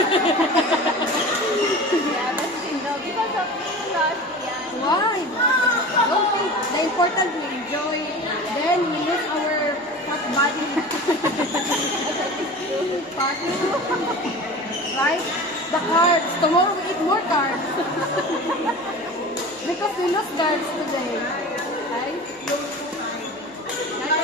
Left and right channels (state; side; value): normal; both; correlation 0.35